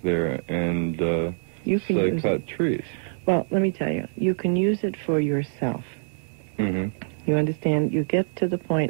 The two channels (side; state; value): left; silent; 62 dB below the other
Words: there and say cut trees. Well, let me tell you, you can use it for yourself. Mm-hmm. You understand? You get to the